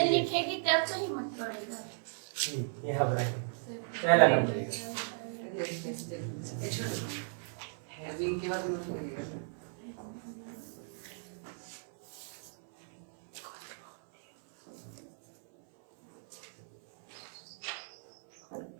लिखेगी तब तो हिम्मत पड़ेगा यहाँ बनाएंगे पहला नंबर। हैविंग के बाद नोट करिएगा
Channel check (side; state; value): left; silent; 54 dB below the other